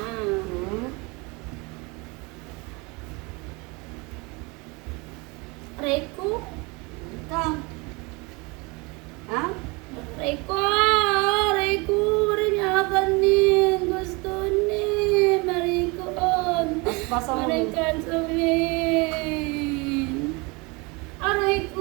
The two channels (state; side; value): quieter; left; 27.4 dB